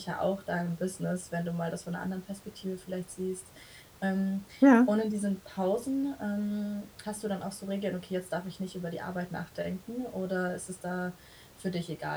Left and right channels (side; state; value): both; identical; correlation 1.00